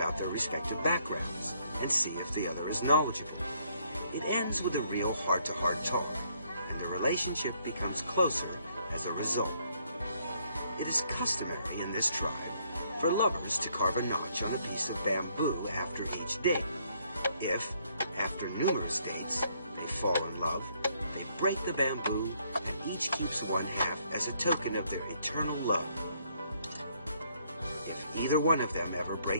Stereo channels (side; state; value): both; inverted; correlation -0.69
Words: their respective backgrounds and see if the other is knowledgeable. It ends with a real heart-to-heart talk, and the relationship becomes closer as a result. It is customary in this tribe for lovers to carve a notch on a piece of bamboo after each date. If, after numerous dates, they fall in love, they break the bamboo and each keeps one half as a token of their eternal love. If either one of them ever